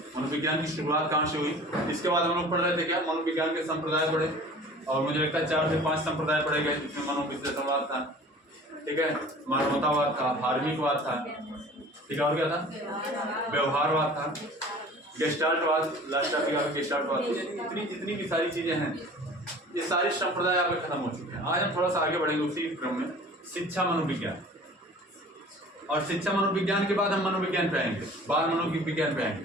मनोविज्ञान की शुरुआत कहाँ से हुई, इसके बाद हम लोग पढ़ रहे थे क्या, मनोविज्ञान के संप्रदाय पढ़े, और मुझे लगता है 4 से 5 संप्रदाय पढ़े गए, जिसमें मनोविश्लेषणवाद था, ठीक है, मानवतावाद था, धार्मिकवाद था, ठीक है, और क्या था, व्यवहारवाद था, गेस्टाल्टवाद, लास्ट टॉपिक आपका गेस्टाल्टवाद। इतनी जितनी भी सारी चीजें हैं, ये सारे संप्रदाय आपके खत्म हो चुके हैं। आज हम थोड़ा सा आगे बढ़ेंगे उसी क्रम में, शिक्षा मनोविज्ञान। और शिक्षा मनोविज्ञान के बाद हम मनोविज्ञान पे आएंगे, बाल मनोविज्ञान पे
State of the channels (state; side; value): normal; both; correlation 0.44